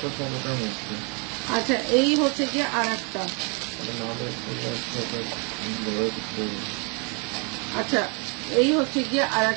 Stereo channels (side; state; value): left; quieter; 34.7 dB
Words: তো সব ওটার মধ্যে। আচ্ছা, এই হচ্ছে গিয়ে আর একটা, আচ্ছা এই হচ্ছে গিয়ে আর